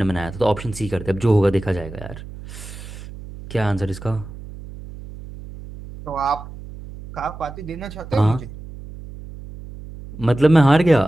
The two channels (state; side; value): noise; right; hum, 14 dB below the sound